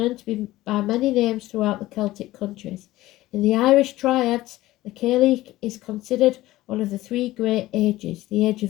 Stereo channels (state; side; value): quieter; right; 16.7 dB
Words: to be by many names throughout the Celtic countries. In the Irish triads, the Cailleach is considered one of the three great ages: the age